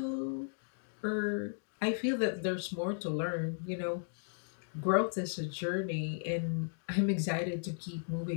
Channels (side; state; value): right; silent; digital silence